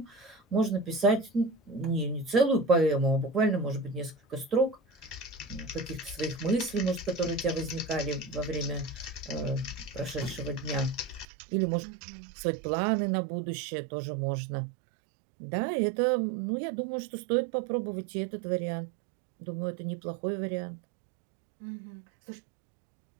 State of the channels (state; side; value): drops out; left; at 11.2 s